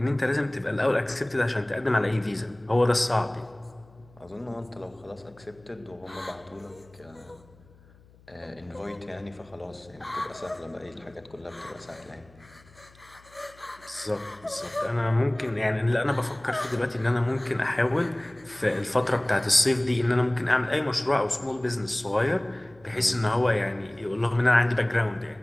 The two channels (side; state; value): left; noise; hum, 26 dB below the sound